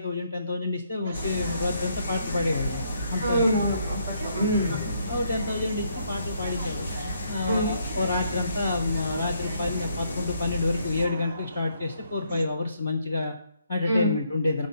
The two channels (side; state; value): both; inverted; correlation -0.72